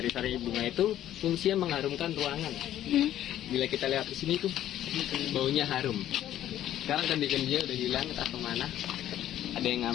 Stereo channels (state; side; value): quieter; right; 12.1 dB